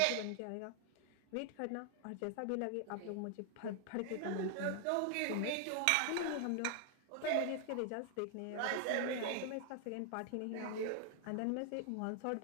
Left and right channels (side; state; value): both; different; correlation 0.00